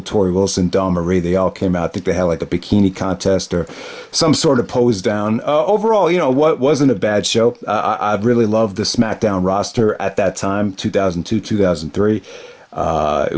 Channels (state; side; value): identical; both; correlation 1.00